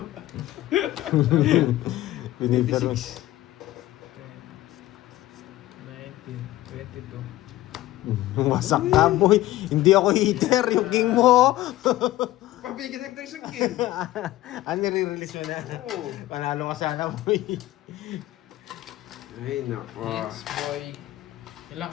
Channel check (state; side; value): quieter; right; 15.8 dB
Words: Binibiro. 26. 19, 22. Wasak ka, boy. Hindi ako heater. Yung king mo. Pabigyan tayo isang king. Nire-release mo na. Oo. Panalo ka sana, boy. Ay, nako. Hits, boy. Ilan